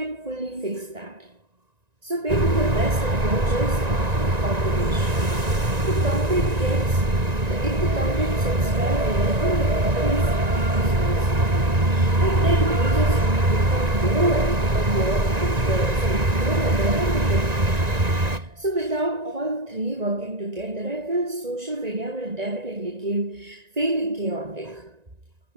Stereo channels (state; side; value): late; left; 1.9 ms